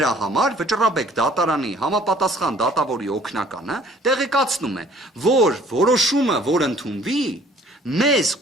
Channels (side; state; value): both; normal; correlation 0.55